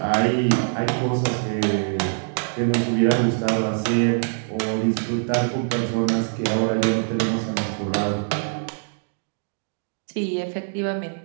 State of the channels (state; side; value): silent; left; digital silence